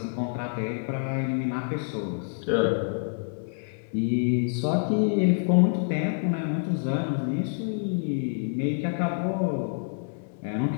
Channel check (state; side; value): silent; right; 60 dB below the other